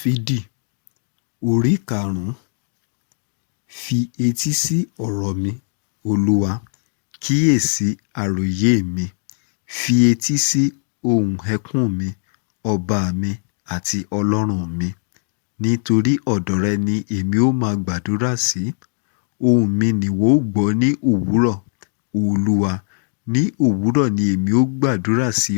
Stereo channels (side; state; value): right; silent; 66 dB below the other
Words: orí karùn-ún. Fi etí sí ọ̀rọ̀ mi, Olúwa, kíyèsí àròyé mi. Fi etí sí ohùn ẹkún mi, ọba mi àti Ọlọ́run mi. Nítorí ọ̀dọ̀ rẹ ni èmi ó máa gbàdúrà sí. Ohùn mi nìwọ ó gbọ́ ní òwúrọ̀. Olúwa, ní òwúrọ̀ ni èmi ó gbàdúrà sí